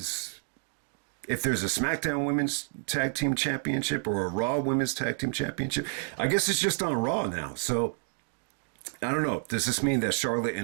a SmackDown Women's Tag Team Championship or a Raw Women's Tag Team Championship. I guess it's just on Raw now. So I don't know. Does this mean that Charlotte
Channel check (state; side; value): silent; left; digital silence